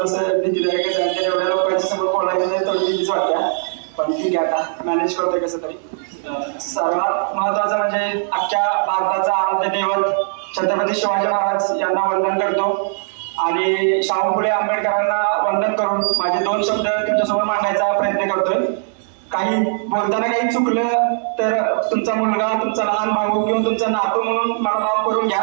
भीतीदायक आहे. एवढ्या लोकांच्या समोर बोलायचं नाही, थोडी भीतीच वाटते, पण ठीक आहे, आता मॅनेज करतोय कसं तरी. सर्वात महत्वाचं म्हणजे अख्ख्या भारताचा आराध्य दैवत छत्रपती शिवाजी महाराज यांना वंदन करतो आणि शाहू फुले आंबेडकरांना वंदन करून माझे 2 शब्द तुमच्यासमोर मांडायचा प्रयत्न करतोय. काही बोलताना काही चुकलं तर तुमचा मुलगा, तुमचा लहान भाऊ किंवा तुमचा नातू म्हणून मला माफ करून घ्या,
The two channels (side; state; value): left; silent; 66 dB below the other